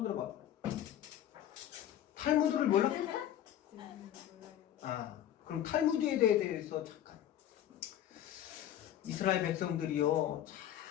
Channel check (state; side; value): quieter; right; 11.4 dB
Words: 들어봐. 탈무드를 몰라? 그럼 탈무드에 대해서 잠깐. 이스라엘 백성들이요,